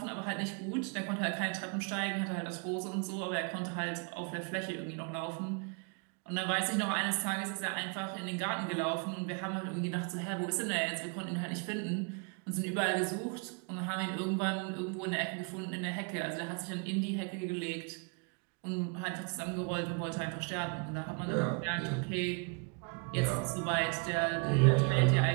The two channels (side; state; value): left; quieter; 35.4 dB